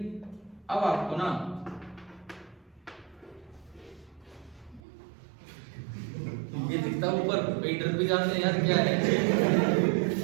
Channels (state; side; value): drops out; left; at 4.8 s